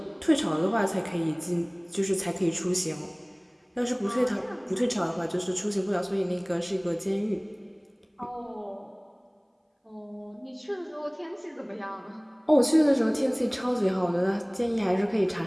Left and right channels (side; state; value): both; identical; correlation 1.00